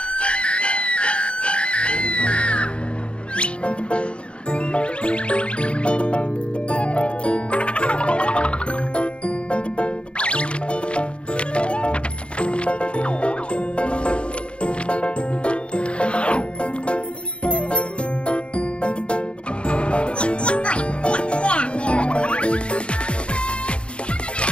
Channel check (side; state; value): right; late; 0.058 ms